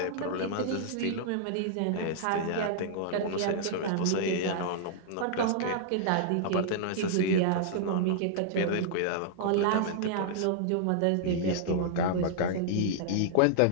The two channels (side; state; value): both; different; correlation -0.01